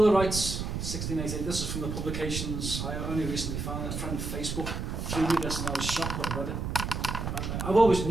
of Rights, 1688. This is from the publications. I only recently found it. A friend on Facebook threw me this and I was shocked when I read it. I've always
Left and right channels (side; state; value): right; noise; rumble, 4 dB below the sound